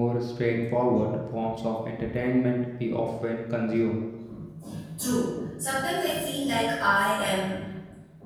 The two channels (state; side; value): identical; both; correlation 1.00